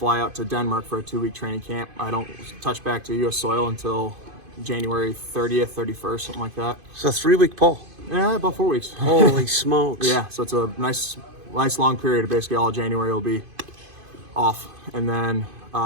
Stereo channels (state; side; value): late; left; 2.5 ms